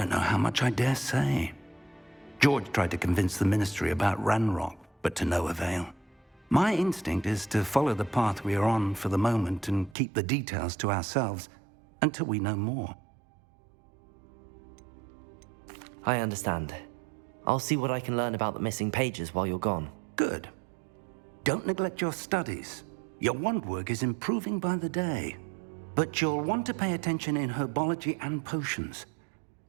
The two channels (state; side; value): drops out; left; at 10.0 s